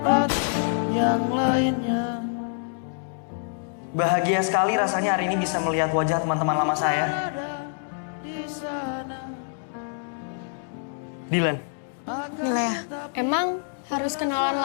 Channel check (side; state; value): right; silent; digital silence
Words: yang lainnya. Bahagia sekali rasanya hari ini bisa melihat wajah teman-teman lama saya. Dilan, Milea, emang harus kenalan